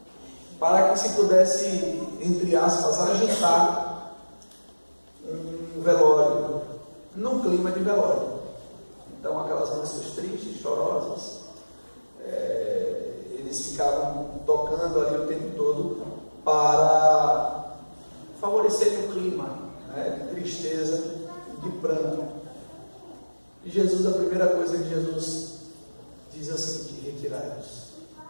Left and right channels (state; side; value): inverted; both; correlation -1.00